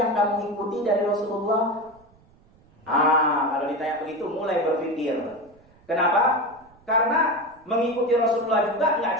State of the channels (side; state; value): right; noise; rumble, 29 dB below the sound